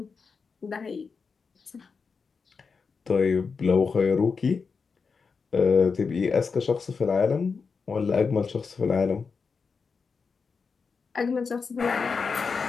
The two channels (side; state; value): right; quieter; 5.2 dB